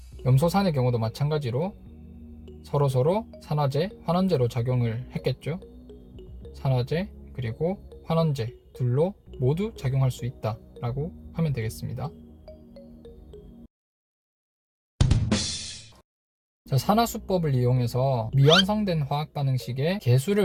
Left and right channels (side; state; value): both; identical; correlation 1.00